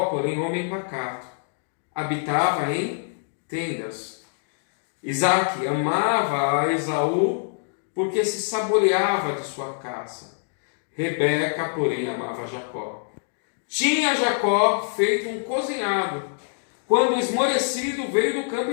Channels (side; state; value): right; silent; digital silence